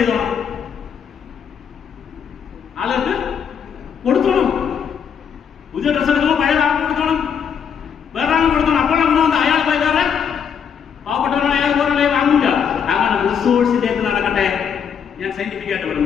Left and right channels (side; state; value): right; quieter; 7.5 dB